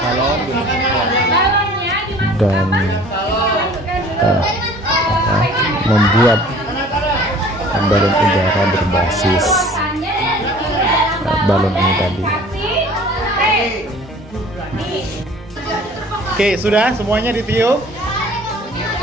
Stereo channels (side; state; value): both; normal; correlation 0.49